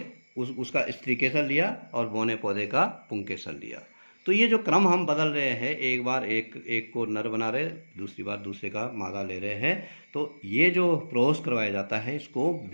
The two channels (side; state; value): both; inverted; correlation -1.00